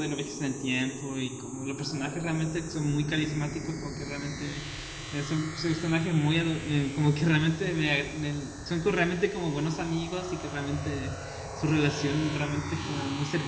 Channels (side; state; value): both; identical; correlation 1.00